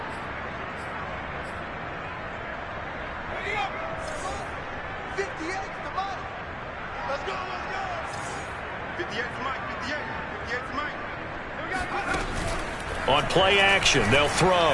On play action, they'll throw.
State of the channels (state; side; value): identical; both; correlation 1.00